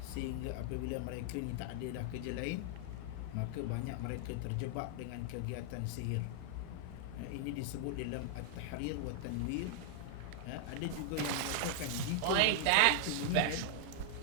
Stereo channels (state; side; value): different; both; correlation 0.00